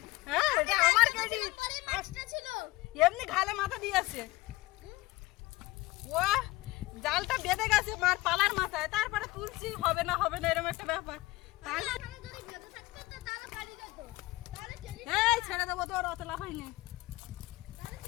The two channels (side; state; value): right; quieter; 20.1 dB